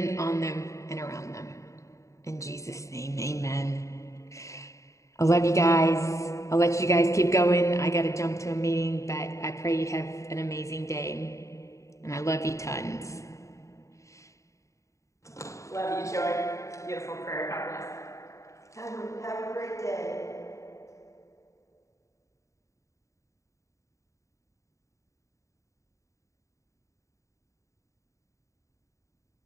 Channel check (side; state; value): right; late; 0.15 ms